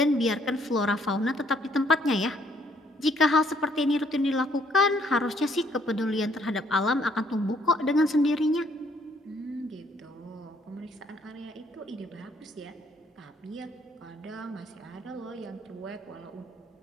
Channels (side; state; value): both; normal; correlation 0.66